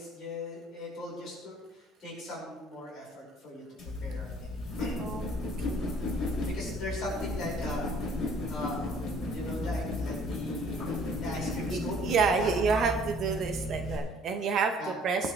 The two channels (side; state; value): both; normal; correlation 0.57